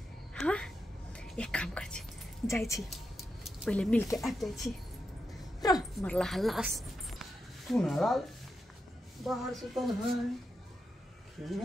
हाँ एक काम कर छी जाई छी पहले मिल के आ जाई छी मरला हल्लास तू ना बाहर से तो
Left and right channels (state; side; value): normal; both; correlation 0.86